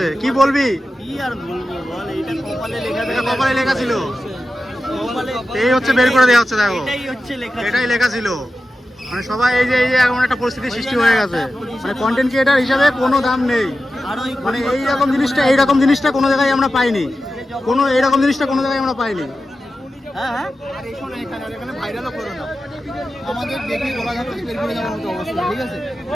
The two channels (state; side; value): normal; both; correlation 0.93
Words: কি বলবি? কি আর বলবো বল, এইটা কপালে লেখা ছিল। এই হচ্ছে বের করে দেওয়া হচ্ছে। দেখো এটাই লেখা ছিল। মানে সবাই এই যে এমন একটা পরিস্থিতির সৃষ্টি হয়ে গেছে, মানে কন্টেন্ট ক্রিয়েটার হিসাবে কোনো দাম নেই। মানে এইরকম জিনিসটা কোনো জায়গায় আমরা পাইনি, এইরকম জিনিসটা কোনো জায়গায় আমরা পাইনি। হ্যাঁ, আর এখানে ভাইরালও করো না, আমাদের দেখে বলা যাচ্ছে বের করে যাওয়ার মতো অবস্থা। ঠিক আছে,